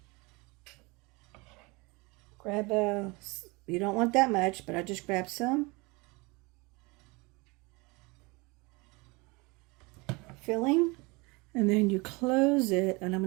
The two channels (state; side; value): quieter; left; 26.2 dB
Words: Grab you don't want that much, but I just grab some. Filling, and then you close it, and I'm